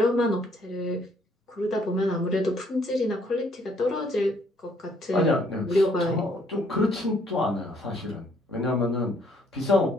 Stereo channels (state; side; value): normal; both; correlation 0.66